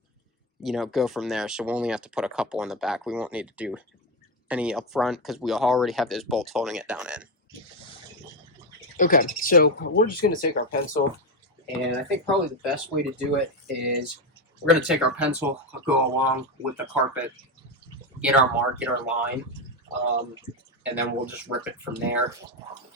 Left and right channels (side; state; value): both; normal; correlation 0.11